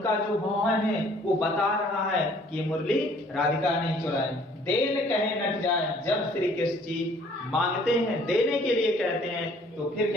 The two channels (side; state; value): both; normal; correlation 0.57